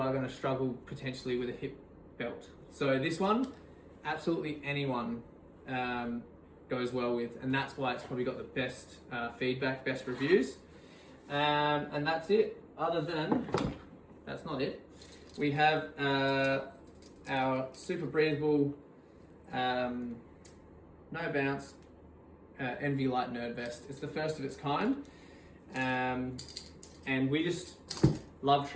struggle potentially with a hip belt. So this one, absolutely anyone goes well with, and that's why it's probably got the best feedback, best reviews. And that's it. That's not it. We have our super breathable, no bounce NV Light Nerd Vest. It's the first of its kind, and we just love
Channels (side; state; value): both; identical; correlation 1.00